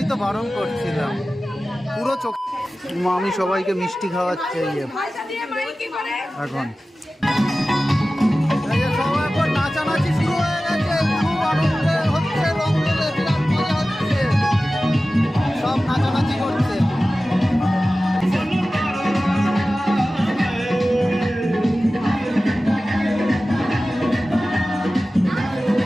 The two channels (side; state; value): both; normal; correlation 0.95